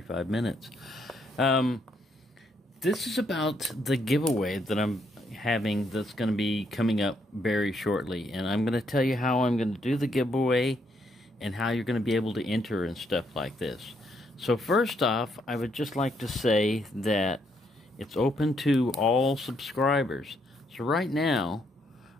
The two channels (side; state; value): both; normal; correlation 0.74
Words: minutes. This is about the giveaway that I'm having that's going to be coming up very shortly, and I'm going to tell you how I'm going to do the giveaway and how you're going to be able to enter and stuff like this. So first off, I would just like to say that it's open to all subscribers. So right now,